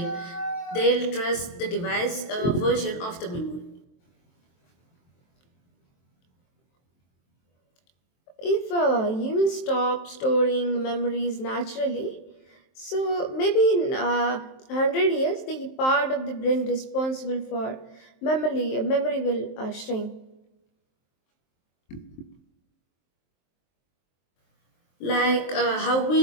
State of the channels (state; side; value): late; right; 23 ms